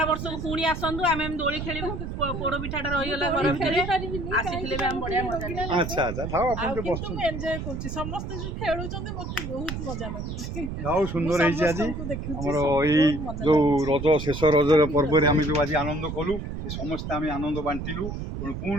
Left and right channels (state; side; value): noise; right; rumble, 6 dB below the sound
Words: ବର୍ଷକୁ ପୁଣି ଆସନ୍ତୁ ଆମେ ଏମିତି ଦୋଳି ଖେଳିବୁ ପୋଡ ପିଠାଟା ରହିଗଲା ଘର ଭିତରେ ଆସିଥିଲେ ବି ଆମେ ବଢିଆ ମଜା ଆଚ୍ଛା ଥାଉ ଆପଣ ଟିକେ ବସନ୍ତୁ ମୁଁ ଏନ୍ଜୟ କରୁଛି ସମସ୍ତେ ଯୋଉ ଖେଳୁଛନ୍ତି ମତେ ବହୁତ ମଜା ଲାଗୁଛି ଯାଉ ସୁନ୍ଦର ହେଇଛି ଆଜି ଆମର ଏଇ ଯୋଉ ରଜ ଶେଷ ରଜର ପର୍ବରେ ଆମେ ଯୋଉ ଆଜି ଆନନ୍ଦ କଲୁ ସମସ୍ତେ ଆମେ ଆନନ୍ଦ ବାଣ୍ଟିଲୁ ତେଣୁ